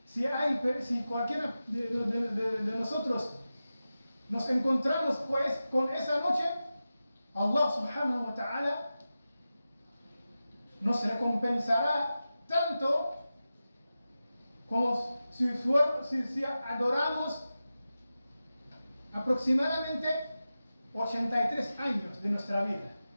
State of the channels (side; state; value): both; inverted; correlation -0.93